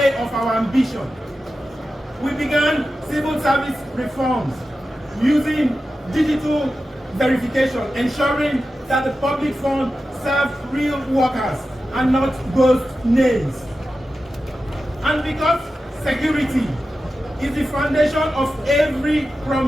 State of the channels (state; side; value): normal; both; correlation 0.92